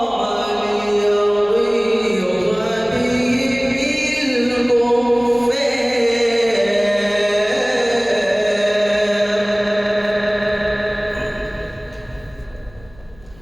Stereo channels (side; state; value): left; noise; hum, 26 dB below the sound